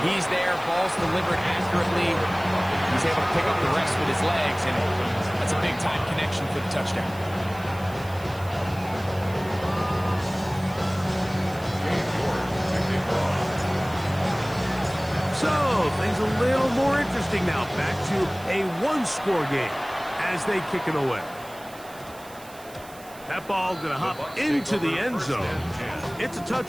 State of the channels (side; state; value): right; noise; hiss, 21 dB below the sound